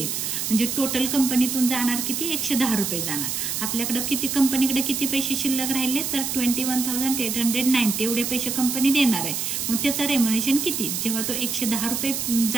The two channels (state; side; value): noise; right; hiss, 2 dB below the sound